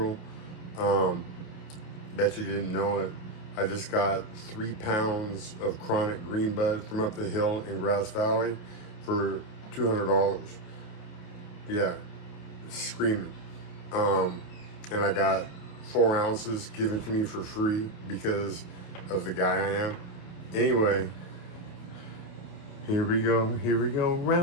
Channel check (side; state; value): right; late; 28 ms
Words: Bet you didn't know it. I just got 3 pounds of chronic green bud from up the hill in Grass Valley for $200. Yeah, screaming. And I got 4 ounces given to me for free because of the guy I am. Anyway, here we go,